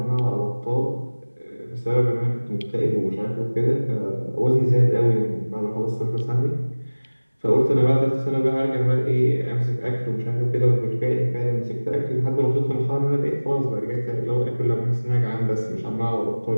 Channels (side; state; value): both; inverted; correlation -1.00